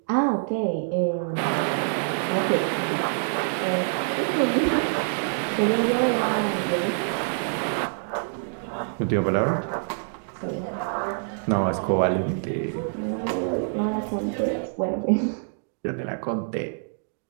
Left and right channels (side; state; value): left; silent; digital silence